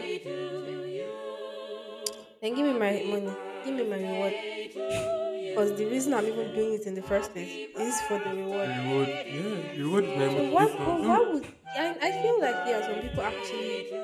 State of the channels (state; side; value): identical; both; correlation 1.00